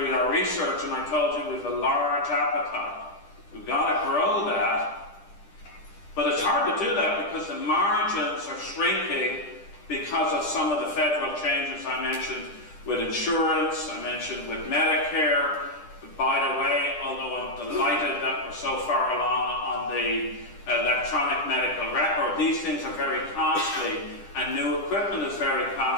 our research, and I told you we have a large appetite. We've got to grow that. But it's hard to do that because the margins are shrinking because of some of the federal changes I mentioned with insurance, I mentioned with Medicare. By the way, although I'm delighted that we're so far along on the electronic medical record, these things are very costly, and new equipment is very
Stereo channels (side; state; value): right; late; 10 ms